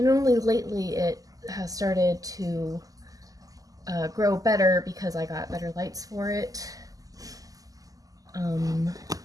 only lately it has started to grow better because I got better lights for it.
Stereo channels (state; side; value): late; left; 0.17 ms